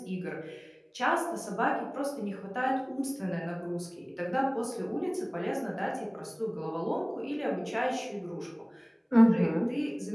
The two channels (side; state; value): both; identical; correlation 1.00